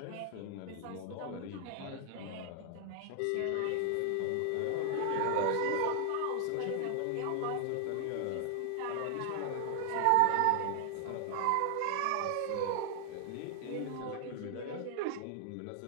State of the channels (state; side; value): different; both; correlation 0.00